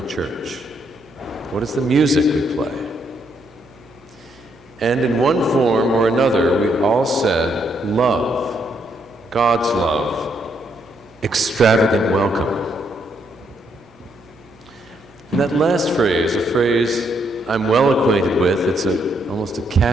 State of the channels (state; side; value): normal; both; correlation 0.74